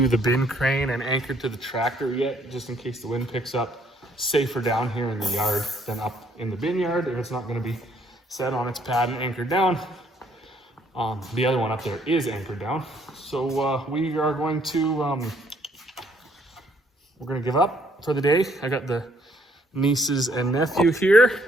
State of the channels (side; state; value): both; normal; correlation 0.65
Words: the bin crane and anchored to the tractor yet, just in case the wind picks up. Safer down here in the yard than up in the bin yard if it's not going to be set on its pad and anchored down. The other one up there is anchored down. So we are going to, we're going to give up for the day. I got the nieces and nephew here.